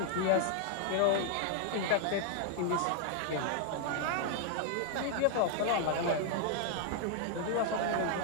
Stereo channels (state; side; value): different; both; correlation 0.00